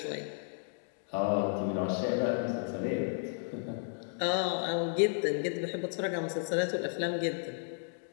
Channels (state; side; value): silent; right; digital silence